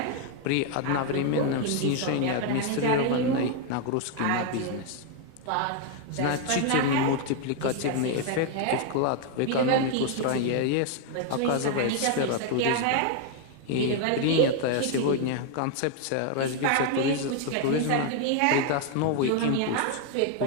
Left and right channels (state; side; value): different; both; correlation 0.00